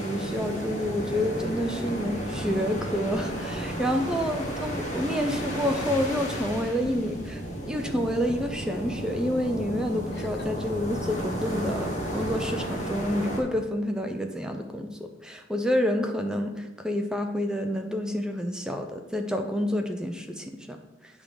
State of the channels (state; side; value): normal; both; correlation 0.71